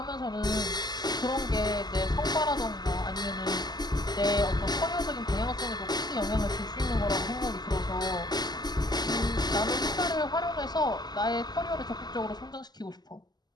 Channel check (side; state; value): right; late; 0.20 ms